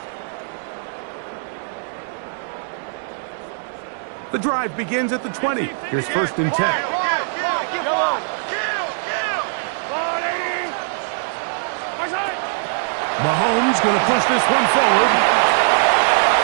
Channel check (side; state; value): left; silent; 65 dB below the other